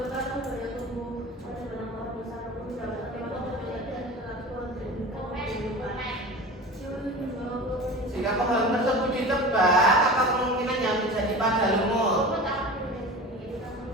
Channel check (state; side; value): normal; both; correlation 0.34